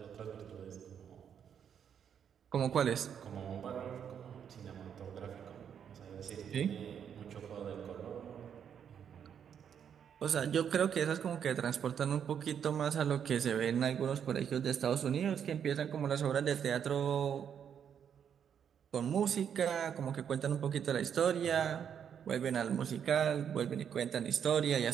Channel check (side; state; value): left; quieter; 8.2 dB